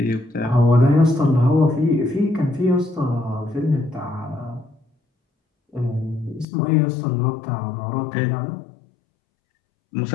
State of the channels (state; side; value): drops out; right; at 6.5 s